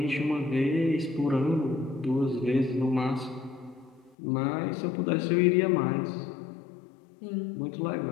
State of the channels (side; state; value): right; drops out; at 4.2 s